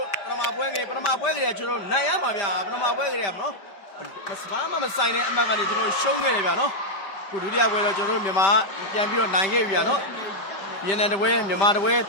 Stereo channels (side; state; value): right; late; 5.1 ms